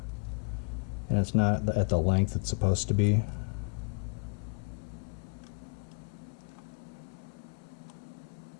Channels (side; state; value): right; quieter; 35.7 dB